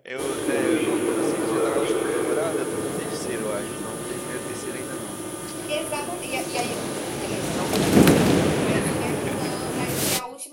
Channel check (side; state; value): both; identical; correlation 1.00